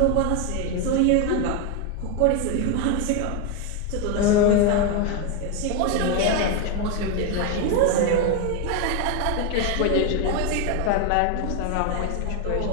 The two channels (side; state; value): both; different; correlation 0.02